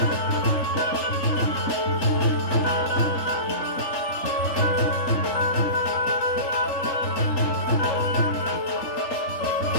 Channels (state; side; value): late; right; 3.4 ms